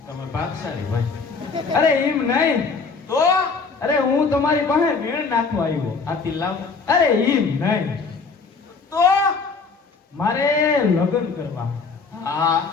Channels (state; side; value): quieter; right; 4.7 dB